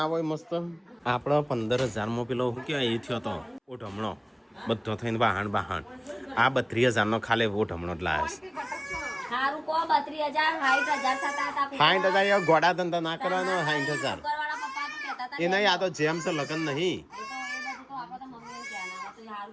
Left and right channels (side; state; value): both; identical; correlation 1.00